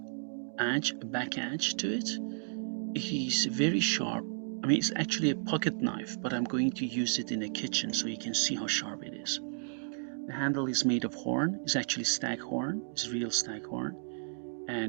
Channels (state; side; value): silent; left; digital silence